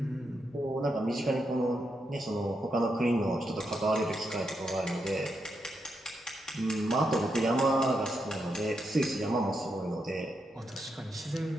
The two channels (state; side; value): normal; both; correlation 0.83